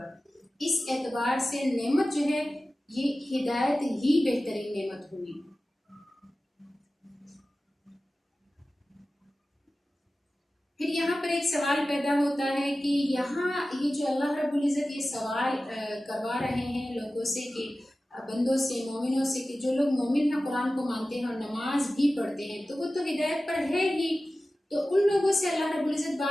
اس اعتبار سے نعمت جو ہے یہ ہدایت ہی بہترین نعمت ہوئی۔ پھر یہاں پر ایک سوال پیدا ہوتا ہے کہ یہاں یہ جو اللہ رب العزت یہ سوال کروا رہے ہیں لوگوں سے کہ بندوں سے، مومنوں سے، کہ جو لوگ مومن ہیں، قرآن کو مانتے ہیں اور نماز بھی پڑھتے ہیں تو وہ تو ہدایت پر ہے ہی، تو ان لوگوں سے اللہ رب العزت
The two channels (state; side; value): normal; both; correlation 0.96